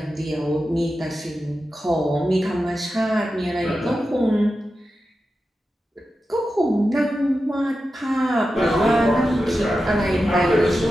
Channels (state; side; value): normal; both; correlation 0.91